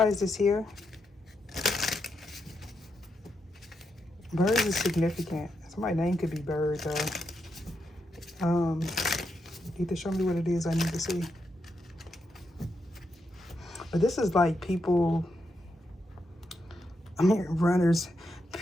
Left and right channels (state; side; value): normal; both; correlation 0.83